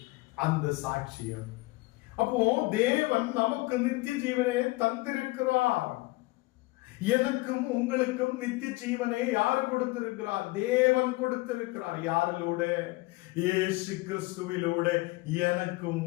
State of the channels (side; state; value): right; quieter; 22.3 dB